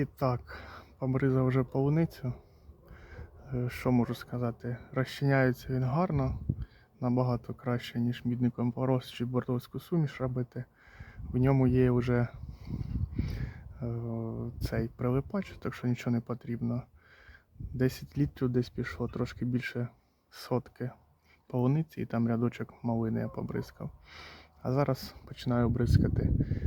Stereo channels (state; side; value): identical; both; correlation 1.00